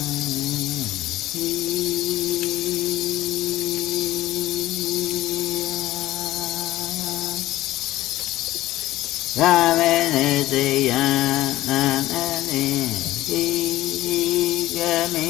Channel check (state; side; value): quieter; right; 15.9 dB